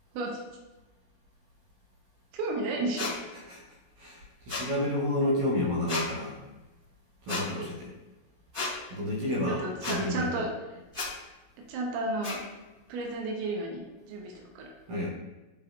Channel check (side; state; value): left; late; 16 ms